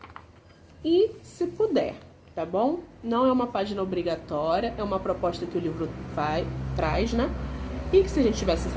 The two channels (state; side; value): identical; both; correlation 1.00